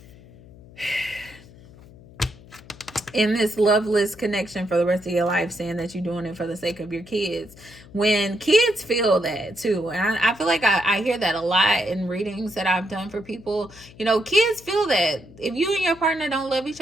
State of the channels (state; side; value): noise; left; hum, 22 dB below the sound